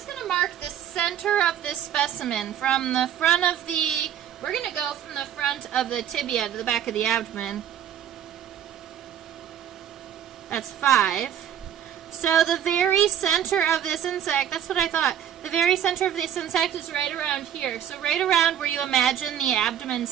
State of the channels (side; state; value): left; quieter; 9.8 dB